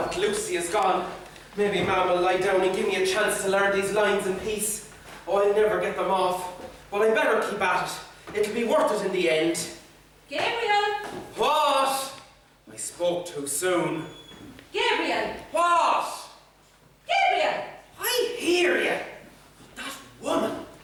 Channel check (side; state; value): both; identical; correlation 1.00